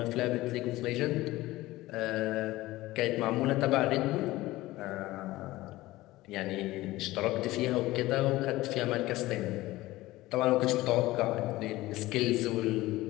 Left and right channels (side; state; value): right; quieter; 18.0 dB